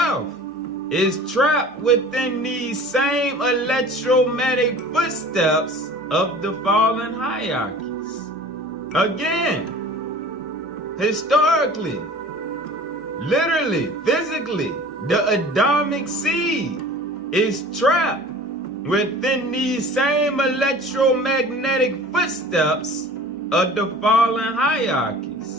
is trapped within these same electromagnetic footsteps of the fallen hierarchies. Again, historically, literally, physically, the Adamic seed is trapped within these same electromagnetic footsteps of the fallen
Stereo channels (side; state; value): both; normal; correlation 0.43